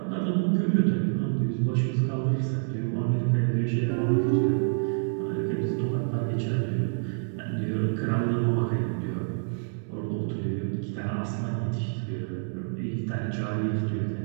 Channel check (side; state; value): left; silent; 60 dB below the other